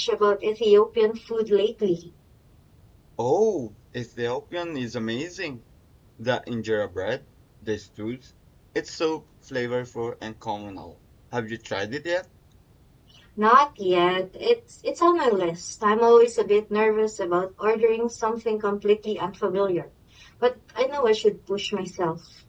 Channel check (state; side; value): identical; both; correlation 1.00